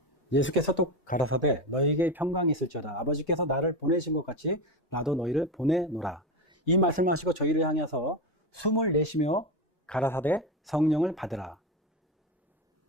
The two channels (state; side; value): normal; both; correlation 0.17